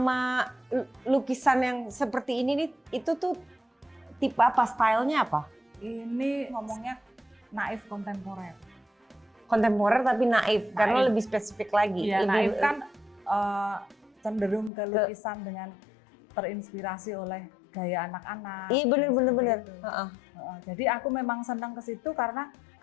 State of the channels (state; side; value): drops out; right; at 14.7 s